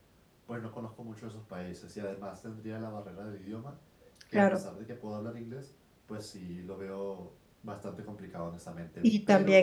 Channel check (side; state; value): both; identical; correlation 1.00